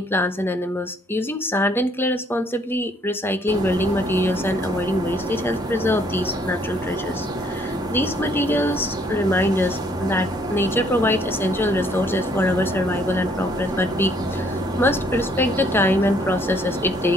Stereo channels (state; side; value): normal; both; correlation 0.65